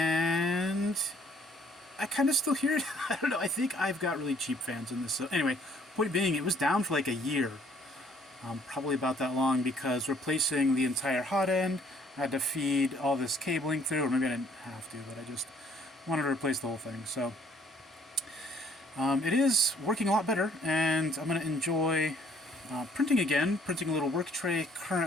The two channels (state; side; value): normal; both; correlation 0.61